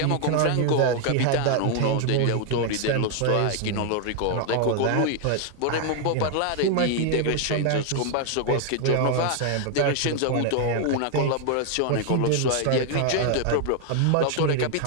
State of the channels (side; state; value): both; different; correlation 0.00